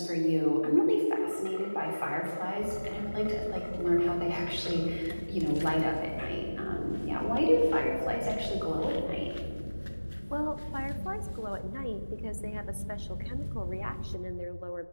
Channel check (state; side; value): inverted; both; correlation -1.00